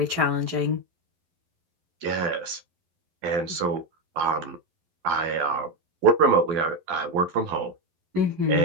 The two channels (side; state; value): left; late; 11 ms